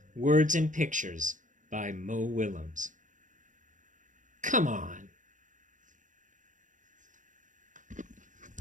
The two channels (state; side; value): late; left; 0.37 ms